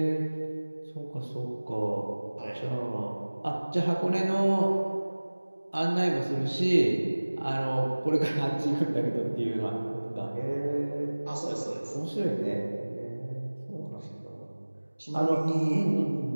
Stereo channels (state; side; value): inverted; both; correlation -1.00